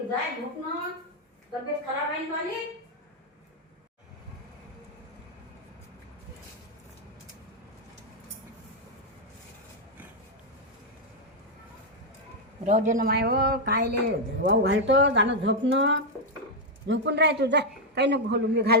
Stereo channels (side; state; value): both; normal; correlation 0.00